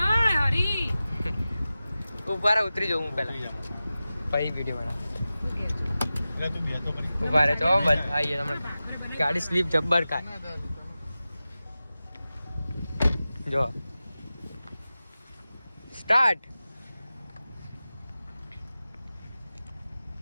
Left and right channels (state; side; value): inverted; both; correlation -0.95